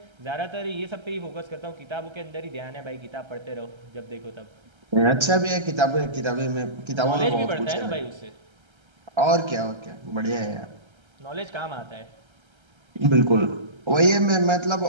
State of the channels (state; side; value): late; left; 1.3 ms